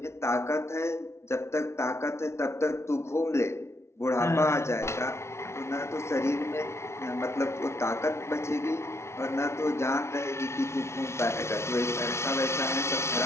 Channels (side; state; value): right; late; 0.13 ms